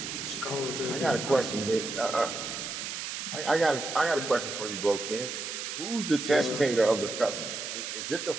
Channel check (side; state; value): right; noise; hiss, 5 dB below the sound